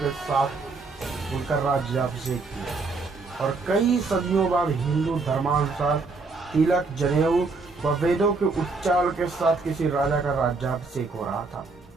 साथ उनका राज्याभिषेक किया और कई सदियों बाद हिंदू धर्मानुसार तिलक, जनेऊ व वेदों के उच्चारण के साथ किसी राजा का राज्याभिषेक हो रहा था।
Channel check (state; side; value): quieter; left; 3.9 dB